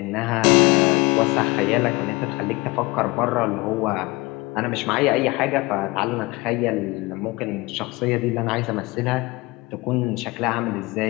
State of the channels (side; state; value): right; quieter; 23.7 dB